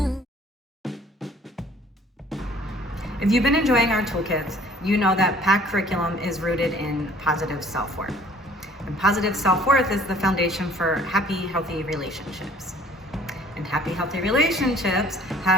If you've been enjoying our toolkits, you know that PACT curriculum is rooted in positive self-worth. And positive self-worth is the foundation for happy, healthy relationships. And happy, healthy relationships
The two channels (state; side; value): normal; both; correlation 0.54